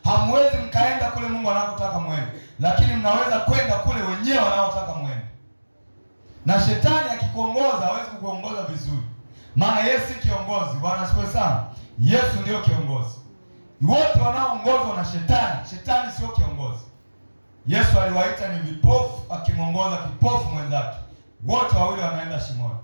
Hamwezi mkaenda kule Mungu anakotaka mwende, lakini mnaweza kwenda kule wenyewe wanaotaka mwende. Na shetani akikuongoza hawezi kukuongoza vizuri, maana Yesu si kiongozi. Bwana asifiwe sana. Yesu ndio kiongozi. Wote wanaoongozwa na shetani, shetani sio kiongozi. Yesu aliwaita ni vipofu, akimwongoza kipofu mwenzake, wote wawili wanaenda shimoni.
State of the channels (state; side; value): inverted; both; correlation -1.00